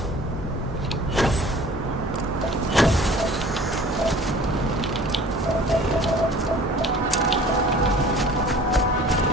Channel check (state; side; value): normal; both; correlation 0.47